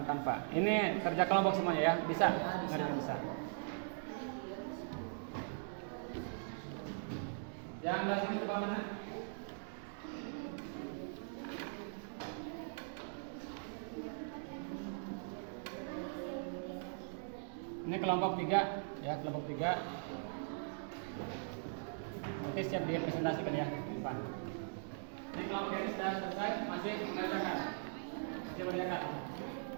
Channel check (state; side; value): silent; left; digital silence